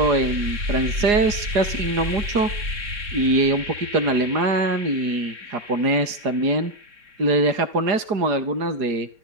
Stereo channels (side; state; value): left; late; 4.8 ms